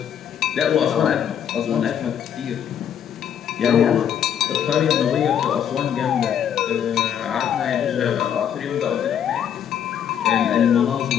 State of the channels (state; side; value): quieter; right; 9.1 dB